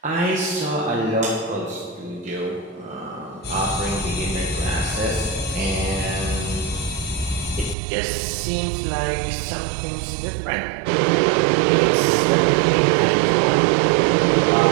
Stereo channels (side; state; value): left; drops out; at 7.8 s